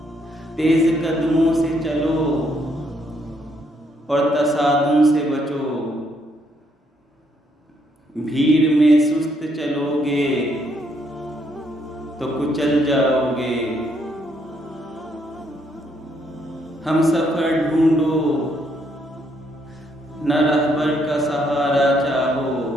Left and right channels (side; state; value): both; normal; correlation 0.72